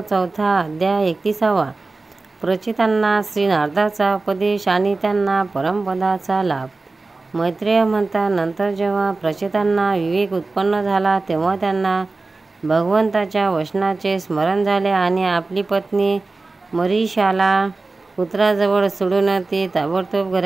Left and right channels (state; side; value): quieter; left; 3.5 dB